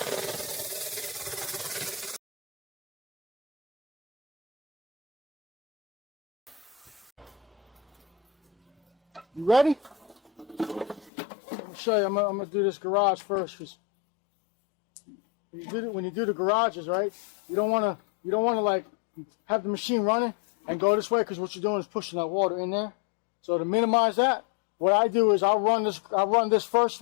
You ready? I'm gonna show you. I'm gonna do this garage first, because when you do the garages, right? You don't want to like have the machine running and go this way, because what you're doing is pushing that water in there. So to minimize that, what I do is I'll run this first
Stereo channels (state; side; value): drops out; right; at 11.1 s